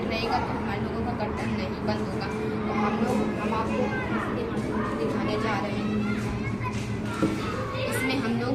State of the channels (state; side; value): identical; both; correlation 1.00